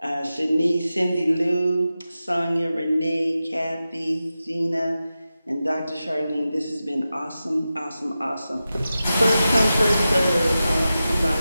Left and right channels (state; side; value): inverted; both; correlation -0.93